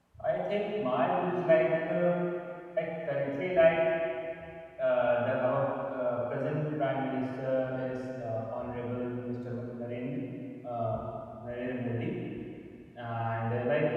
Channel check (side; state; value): both; identical; correlation 1.00